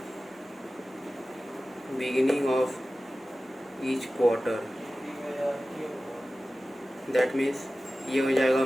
beginning of each quarter, that means ये हो जाएगा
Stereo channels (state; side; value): normal; both; correlation 0.96